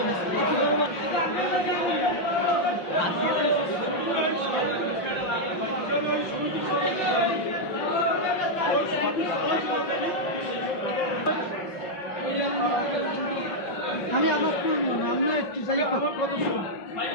আমি আমার আমি একটু যাই আমার কত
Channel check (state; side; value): late; right; 5.6 ms